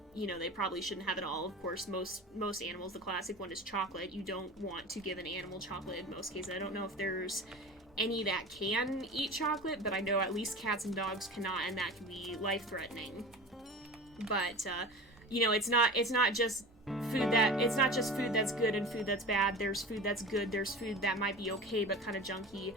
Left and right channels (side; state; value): both; normal; correlation 0.34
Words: you know, they probably shouldn't have at all. Of course, most animals, the classic one is chocolate. You don't want to give an animal chocolate in most cases. I don't know if there's any that can eat chocolate, but I know at least cats and dogs cannot, and that can be life-threatening. But, you know, it's not just food that's good and food that's bad. There's food that's good, there's food that might be okay but kind of junky,